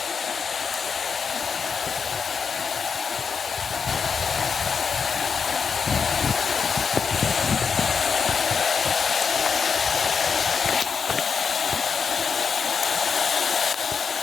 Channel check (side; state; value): right; quieter; 6.0 dB